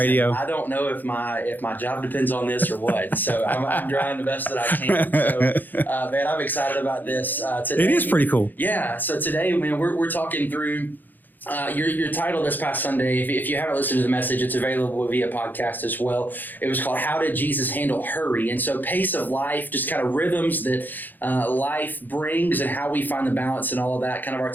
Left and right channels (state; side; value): late; right; 0.087 ms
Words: I don't know if my job depends on this or what, so I'm trying the best that I can. So, man, I'm excited about this today. It is pretty cool. Yeah, so today, man, we're talking through your title this past Sunday. If you haven't listened to the message, it's available via podcast as well. It was called How Did Jesus Handle Hurry? And so pace of life, just kind of rhythms that life brings and how we find the balance and all of that, kind of our